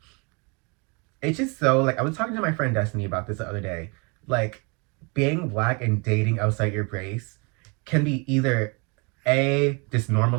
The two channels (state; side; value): quieter; left; 31.5 dB